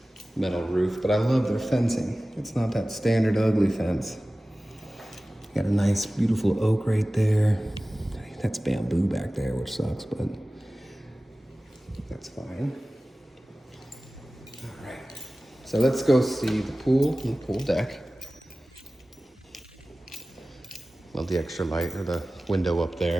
metal roof, but I love their fencing. It's not that standard ugly fence. Got a nice, beautiful oak right there. That's bamboo back there, which sucks, but that's fine. All right, so let's go see the pool and the pool deck. Love the extra light or the window up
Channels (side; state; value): both; normal; correlation 0.97